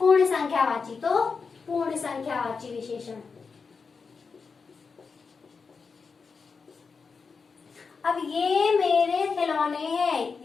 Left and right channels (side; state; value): right; quieter; 5.1 dB